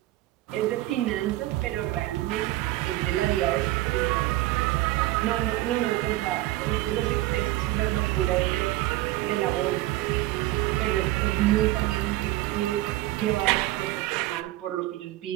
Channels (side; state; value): left; quieter; 16.8 dB